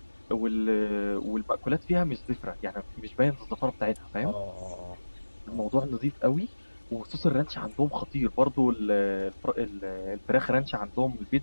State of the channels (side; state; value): both; inverted; correlation -1.00